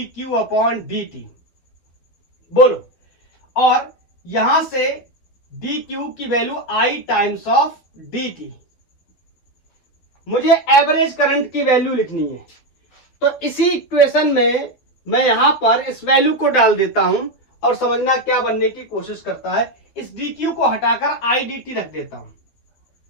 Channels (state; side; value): late; right; 12 ms